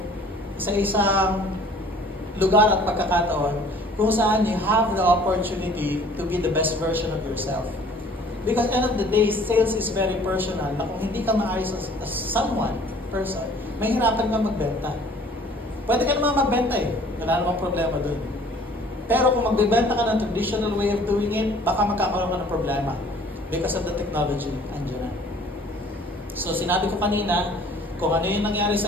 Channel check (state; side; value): normal; both; correlation 0.53